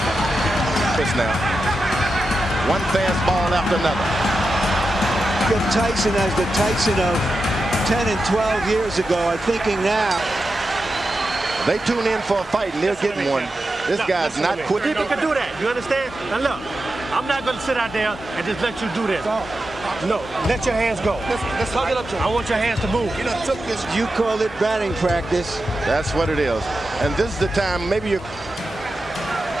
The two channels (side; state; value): both; normal; correlation 0.90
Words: This now. One fastball after another. If Tyson as the Tyson of 10 and 12 years ago are thinking now. They tune in for a fight and they're getting one. This guy's not quitting. People can do that, you understand? Now look, I'm not going to sit out there and just let you do this. No, let your hands go. Let's hug it up to him. I want your hands to move. You call it batting practice. That's what it is. And this is the time, maybe you're...